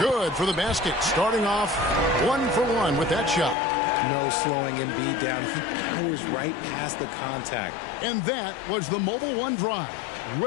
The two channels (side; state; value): right; drops out; at 3.6 s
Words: for the basket. Starting off 1-for-1 with that shot. No slowing Embiid down. He powers right past the contact. And that was the Mobile One drive.